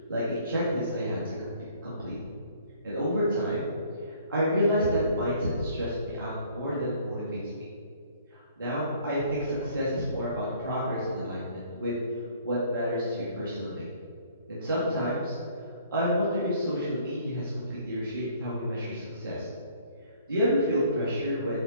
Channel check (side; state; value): both; inverted; correlation -0.58